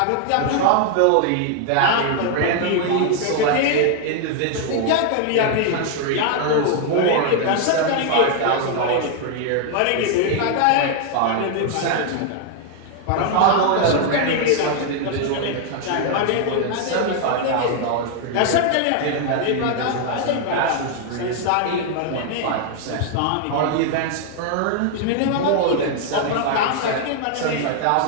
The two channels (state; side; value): different; both; correlation 0.00